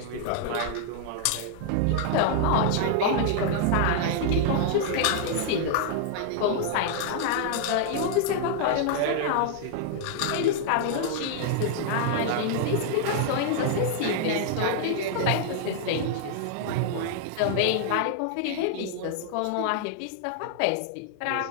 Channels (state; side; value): different; both; correlation 0.00